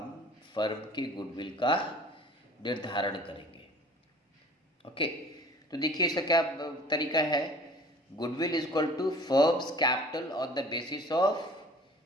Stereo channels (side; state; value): both; normal; correlation 0.48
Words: फर्म के गुडविल का निर्धारण करेंगे। ओके, तो देखिए इसका क्या तरीका है। Goodwill is equal to firm's capital on the basis of